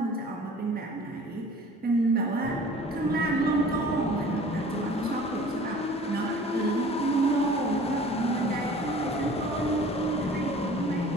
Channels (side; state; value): both; normal; correlation 0.47